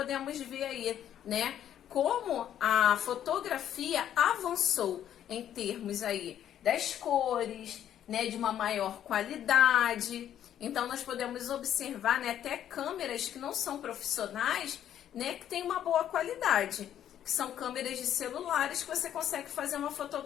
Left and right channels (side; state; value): right; quieter; 10.6 dB